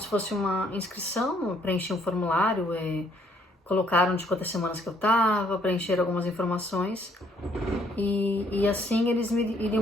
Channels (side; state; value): both; normal; correlation 0.66